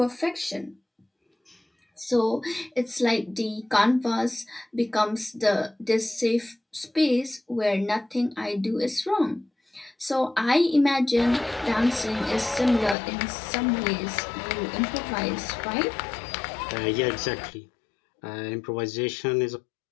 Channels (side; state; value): right; drops out; at 13.0 s